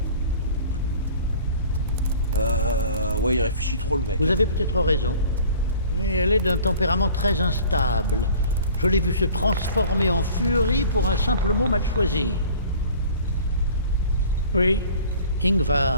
Ouais, il réfléchit trop le mec. Vous avez peut-être raison, mais elle est d'un tempérament très instable. Je l'ai vue se transformer en furie pour un simple mot mal choisi. Oui,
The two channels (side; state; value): both; inverted; correlation -0.47